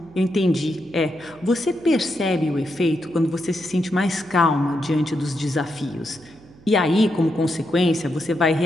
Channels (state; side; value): noise; right; hum, 24 dB below the sound